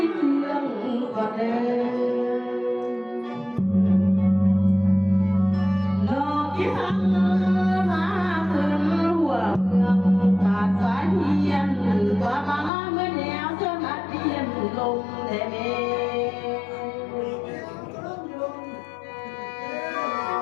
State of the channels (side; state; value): right; drops out; at 12.7 s